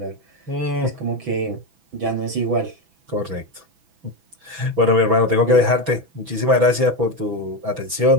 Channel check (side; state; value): left; late; 6.1 ms